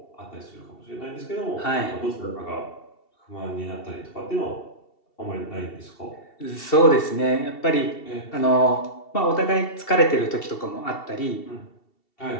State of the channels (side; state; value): right; late; 2.7 ms